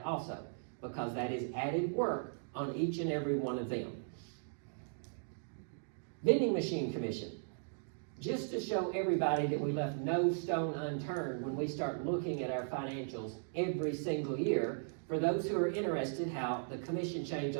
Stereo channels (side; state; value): left; silent; digital silence